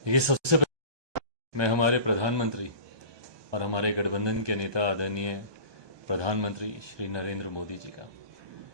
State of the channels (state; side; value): late; left; 1.2 ms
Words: ये सबसे पहले मैं हमारे प्रधानमंत्री और हमारे गठबंधन के नेता आदरणीय प्रधानमंत्री श्री नरेंद्र मोदी जी का